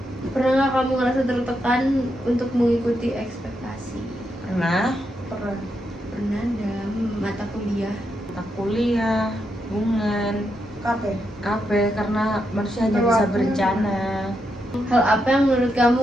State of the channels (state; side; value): normal; both; correlation 0.82